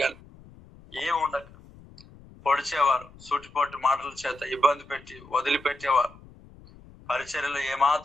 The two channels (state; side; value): noise; left; rumble, 22 dB below the sound